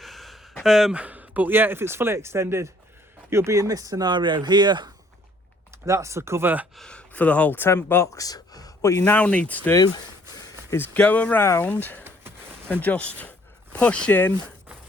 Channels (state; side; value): normal; both; correlation 0.61